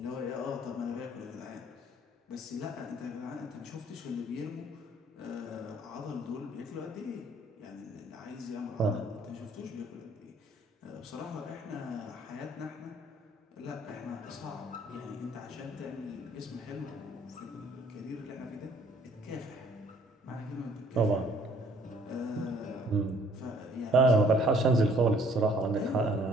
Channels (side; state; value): both; normal; correlation 0.60